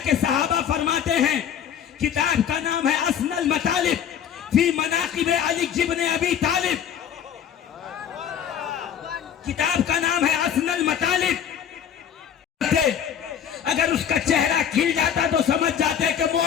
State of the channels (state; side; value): quieter; right; 8.8 dB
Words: सहाबा फरमाते हैं, किताब का नाम है असनल मतालिब फी मनाकिब अली इब्न अबी तालिब, किताब का नाम है असनल मतालिब। अगर उसका चेहरा खिल जाता तो समझ जाते कि